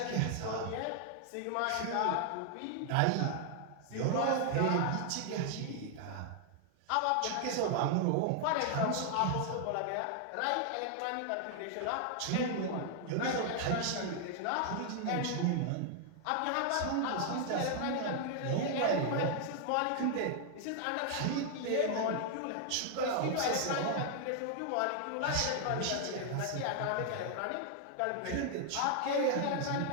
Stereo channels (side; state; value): both; different; correlation 0.00